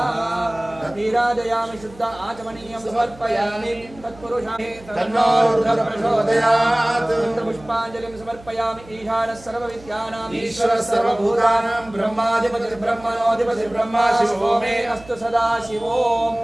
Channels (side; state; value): right; noise; hum, 21 dB below the sound